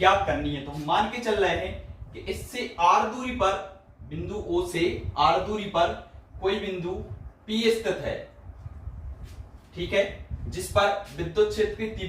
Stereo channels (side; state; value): both; identical; correlation 1.00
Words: करनी है। तो हम मान के चल रहे हैं कि इससे R दूरी पर, बिंदु O से R दूरी पर कोई बिंदु P स्थित है। ठीक है, जिस पर विद्युत क्षेत्र की